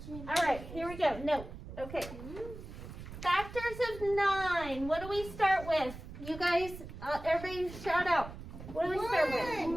All right, here we go. No. Okay. Factors of 9. What do we start with? You guys, everybody shout out. What do we start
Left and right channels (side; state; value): right; noise; rumble, 12 dB below the sound